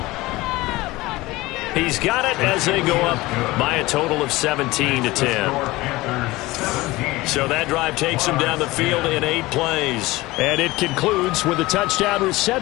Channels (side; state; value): right; quieter; 19.9 dB